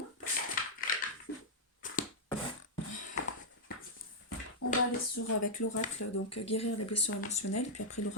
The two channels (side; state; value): both; normal; correlation -0.06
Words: On va aller avec l'oracle, donc guérir les blessures émotionnelles, puis après